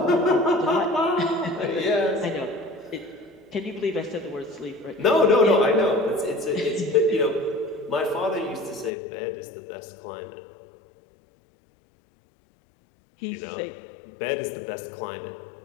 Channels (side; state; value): right; drops out; at 8.9 s